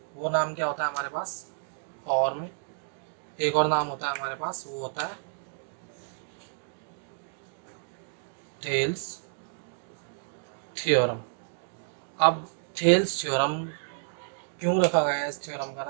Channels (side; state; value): left; silent; digital silence